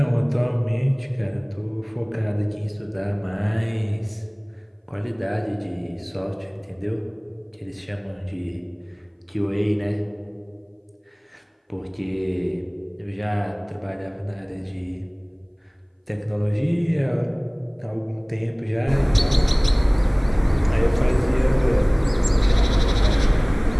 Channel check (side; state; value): both; identical; correlation 1.00